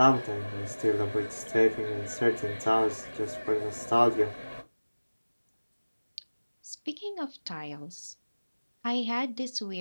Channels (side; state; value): both; inverted; correlation -1.00